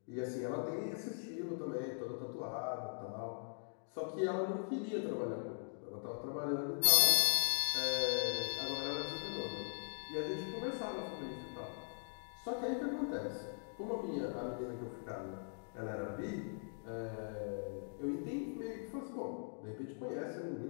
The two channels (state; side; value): silent; right; digital silence